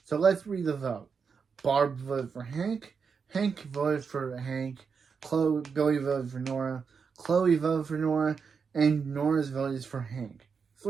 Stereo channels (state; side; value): quieter; left; 5.8 dB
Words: So let's read the vote. Barb voted for Hank. Hank voted for Hank. Billy voted for Nora. Chloe voted for Nora. And Nora's vote is for Hank.